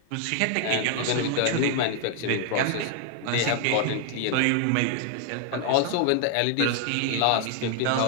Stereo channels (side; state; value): both; different; correlation 0.00